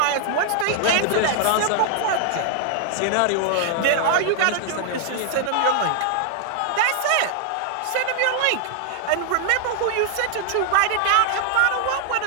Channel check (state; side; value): different; both; correlation 0.00